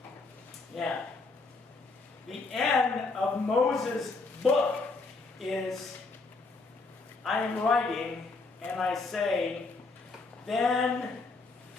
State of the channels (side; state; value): right; quieter; 3.8 dB